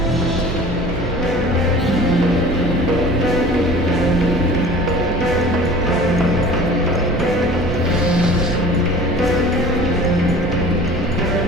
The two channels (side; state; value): both; normal; correlation 0.43